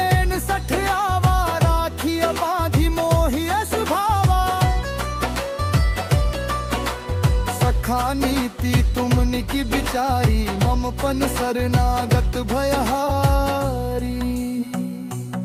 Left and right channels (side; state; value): both; identical; correlation 1.00